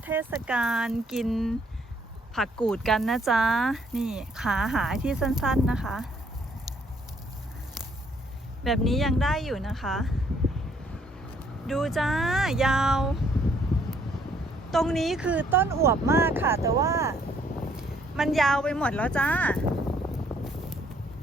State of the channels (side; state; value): both; normal; correlation 0.66